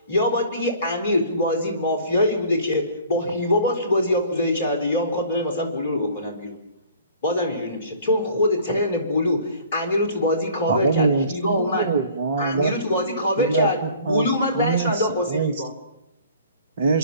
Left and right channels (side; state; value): both; inverted; correlation -0.50